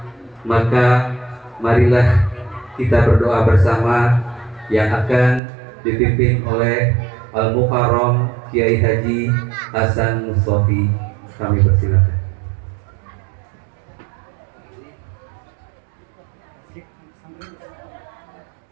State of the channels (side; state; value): left; drops out; at 5.4 s